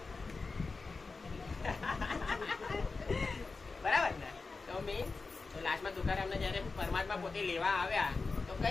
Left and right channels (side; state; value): right; quieter; 4.1 dB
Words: બરાબર ને? તો લાસ્ટમાં તુકારામને જયારે પરમાત્મા પોતે લેવા આવ્યા તો